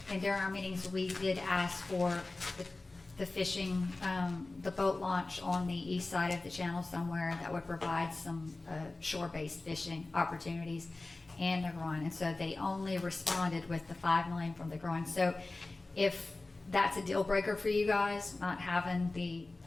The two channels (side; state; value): right; quieter; 3.2 dB